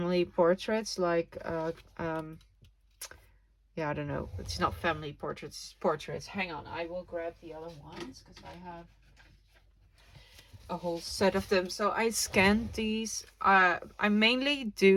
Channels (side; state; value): both; identical; correlation 1.00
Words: portraits, like yeah, I don't know, it's not family portraits, it's portraits. Hang on, I will grab the other ones because I have a whole set of them. So I scanned these. I mainly